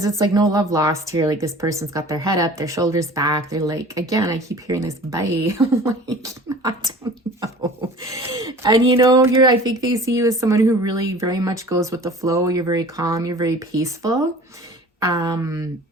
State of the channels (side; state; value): both; normal; correlation 0.43